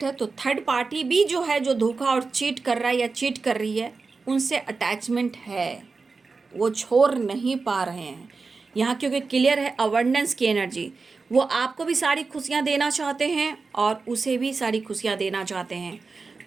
है, तो थर्ड पार्टी भी जो है, जो धोखा और चीट कर रहा है या चीट कर रही है, उनसे अटैचमेंट है, वो छोड़ नहीं पा रहे हैं यहाँ, क्योंकि क्लियर है अबंडेंस की एनर्जी। वो आपको भी सारी खुशियाँ देना चाहते हैं और उसे भी सारी खुशियाँ देना चाहते हैं।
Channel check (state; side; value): quieter; left; 4.3 dB